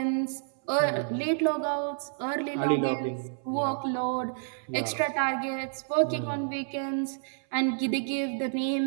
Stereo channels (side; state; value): left; silent; 58 dB below the other